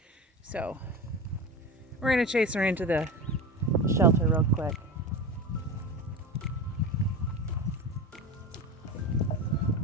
So we're gonna chase her into the shelter real quick.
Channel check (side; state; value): both; normal; correlation 0.27